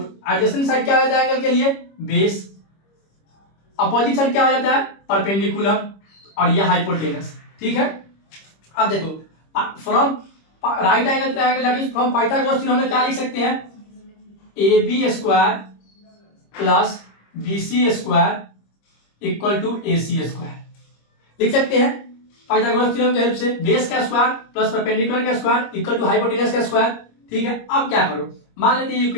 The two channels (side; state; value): right; late; 25 ms